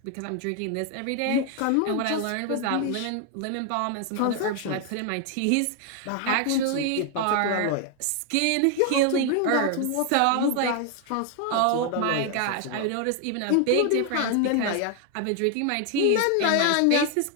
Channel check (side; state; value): both; different; correlation 0.01